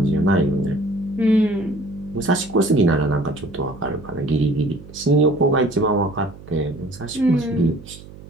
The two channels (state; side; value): noise; right; hum, 18 dB below the sound